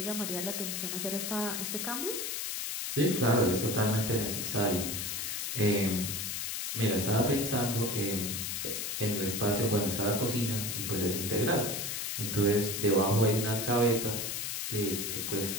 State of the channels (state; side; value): noise; left; hiss, 3 dB below the sound